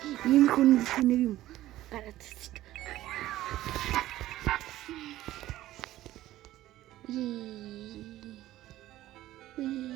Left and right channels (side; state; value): left; quieter; 14.9 dB